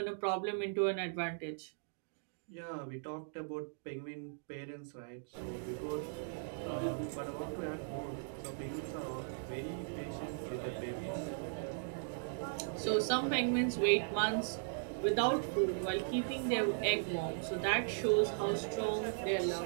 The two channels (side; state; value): left; silent; digital silence